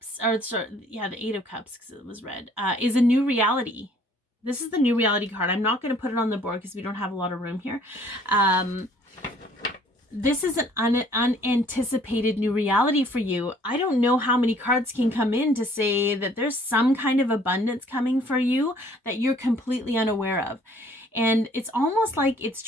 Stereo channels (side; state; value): both; normal; correlation 0.58